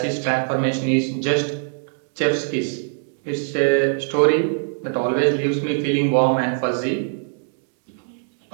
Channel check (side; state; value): left; silent; digital silence